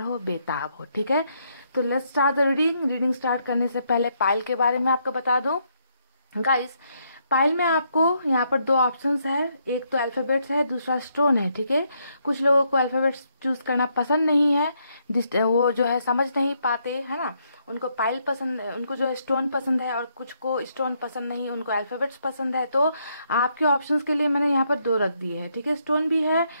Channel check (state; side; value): inverted; both; correlation -0.75